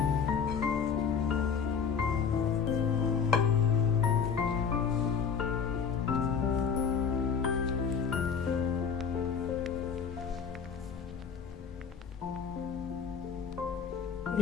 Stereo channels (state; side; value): quieter; right; 6.5 dB